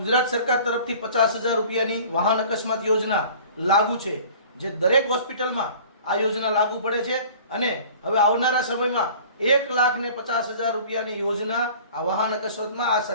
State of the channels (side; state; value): both; inverted; correlation -0.46